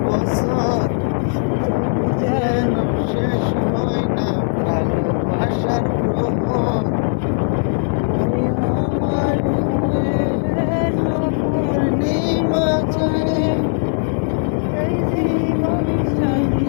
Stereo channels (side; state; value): right; silent; digital silence